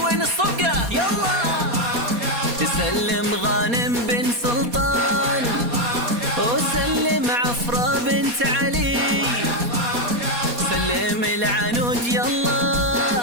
الصفقة يلا. تسلم غانم بن سلطان وسلم عفرة بنت علي. سلم العنود يلا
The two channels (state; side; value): late; left; 4.2 ms